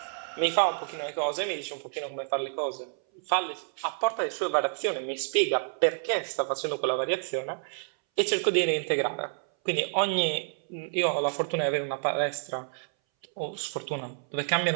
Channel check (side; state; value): left; silent; 59 dB below the other